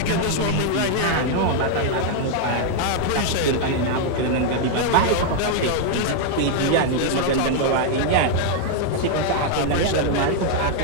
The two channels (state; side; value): different; both; correlation 0.00